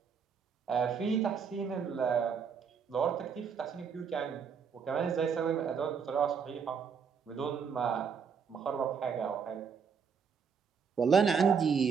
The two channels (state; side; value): quieter; left; 6.4 dB